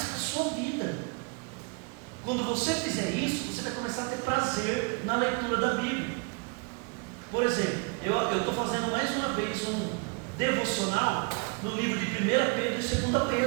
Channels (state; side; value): quieter; left; 33.1 dB